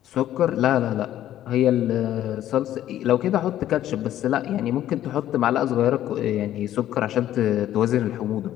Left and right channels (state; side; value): quieter; right; 12.4 dB